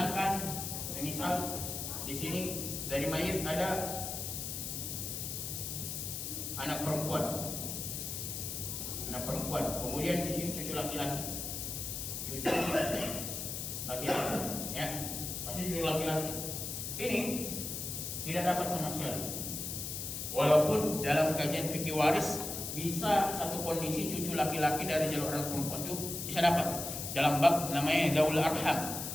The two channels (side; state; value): left; noise; hiss, 5 dB below the sound